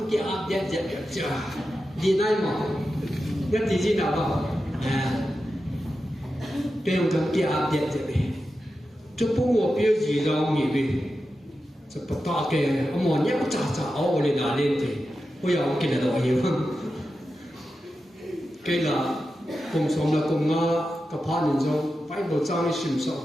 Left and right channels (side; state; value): both; normal; correlation 0.91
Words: cái áp giật giật giật chưa. Đi này mà nhất thì gì nào không? Đây là cái kia áp điện thế này. Chú bố ngồi biểu gì đâu nghỉ về. Chú bắt ta cái ông mòn nhắc chả chả áo lên là lên thì bây giờ cái là đồ hiểu không? Cái là cùng sống là cùng ngã cái phá nhân trong phải bộ trang sinh sống